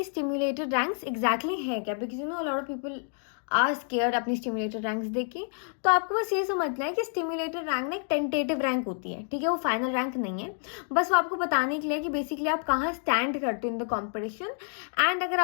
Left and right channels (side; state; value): right; silent; 55 dB below the other